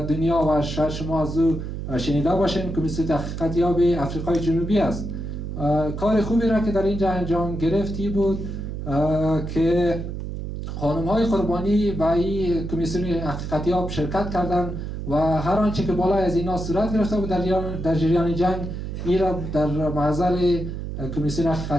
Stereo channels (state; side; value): noise; right; hum, 6 dB below the sound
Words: و شاید شما از او شنیده باشین، کمیسیون حقیقتیاب افریقای جنوبی است. کار خوبی را که در اینجا انجام گرفتی بود که خانم‌های قربانی به این کمیسیون حقیقتیاب شرکت کردند و هر آنچه که بالای از اینا صورت گرفته بود در جریان جنگ این را در محضر کمیسیون